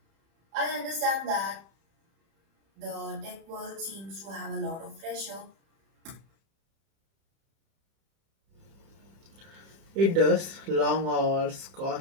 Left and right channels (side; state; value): left; late; 31 ms